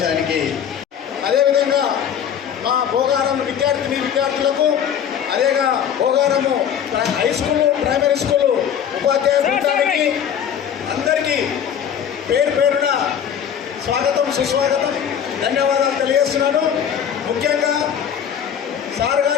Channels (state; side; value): quieter; right; 8.6 dB